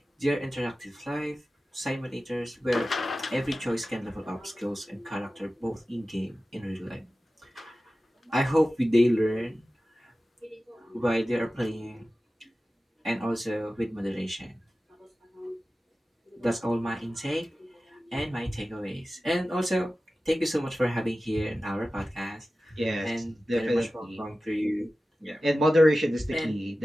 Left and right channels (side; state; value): both; normal; correlation 0.95